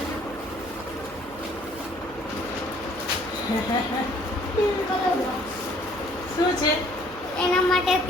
શું છે એના માટે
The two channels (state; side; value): noise; right; hum, 20 dB below the sound